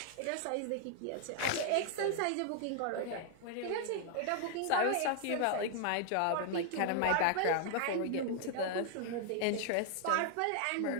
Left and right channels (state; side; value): different; both; correlation 0.00